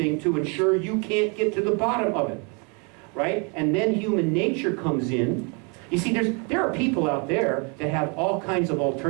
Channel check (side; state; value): left; quieter; 33.9 dB